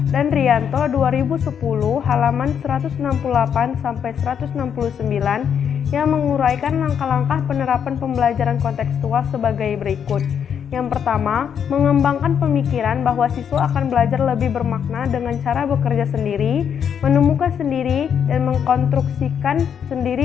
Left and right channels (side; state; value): right; quieter; 8.0 dB